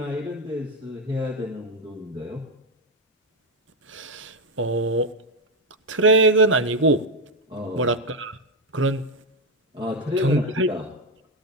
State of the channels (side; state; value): both; normal; correlation 0.06